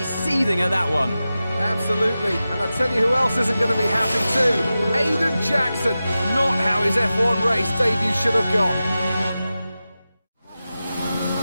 seething at that one. Absolutely. And I tell you who else isn't going to be happy too. Aiden Jackson. Not how his F1 race debut should have gone.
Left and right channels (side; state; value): both; inverted; correlation -0.94